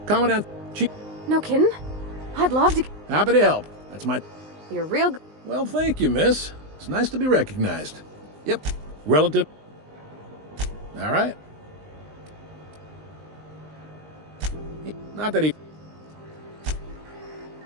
Commandant. Chief. No kidding? I'd love to... Happy to help. That's my... You're real... Well, thank you, miss. It's nice to be recognized. Yep. Relative. All right. Not that he...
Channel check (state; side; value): late; left; 19 ms